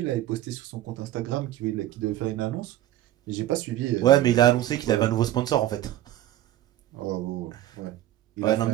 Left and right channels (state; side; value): quieter; left; 13.7 dB